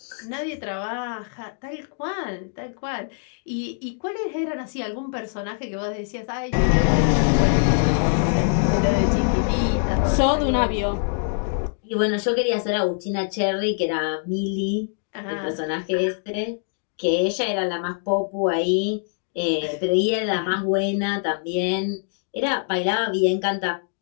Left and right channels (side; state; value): right; silent; digital silence